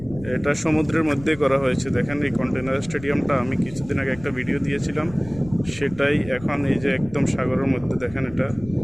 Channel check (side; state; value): left; noise; rumble, 17 dB below the sound